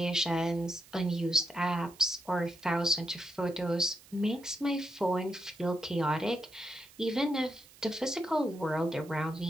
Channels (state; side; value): noise; right; hiss, 23 dB below the sound